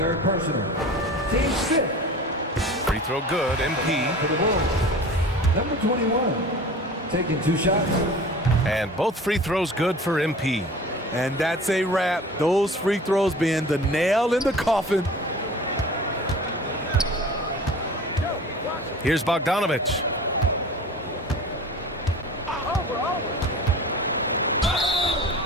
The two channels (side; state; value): both; normal; correlation 0.40